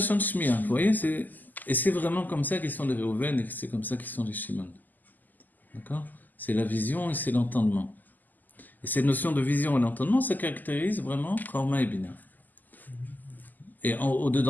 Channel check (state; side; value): late; right; 0.085 ms